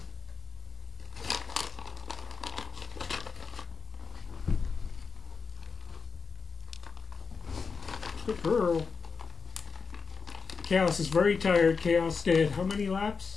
Good girl. Chaos is very tired. Chaos did how many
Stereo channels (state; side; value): quieter; right; 5.0 dB